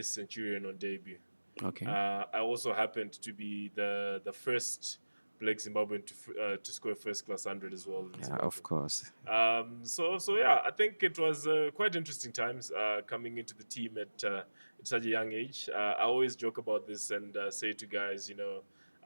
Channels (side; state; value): both; inverted; correlation -1.00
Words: centurion on debut. Okay. I also happened to be the first Black Zimbabwean to score first class 100 as well. Yeah, of course. So yeah, I think it was quite interesting times coming into the team at such a young age. I always joke about this and say to guys,